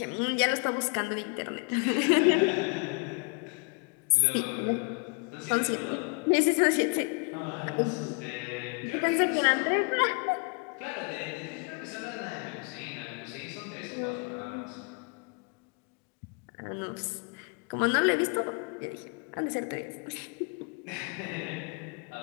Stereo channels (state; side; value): quieter; right; 35.0 dB